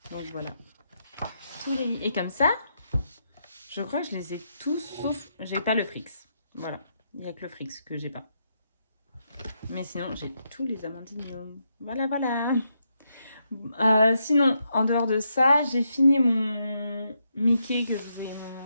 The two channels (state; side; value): inverted; both; correlation -0.81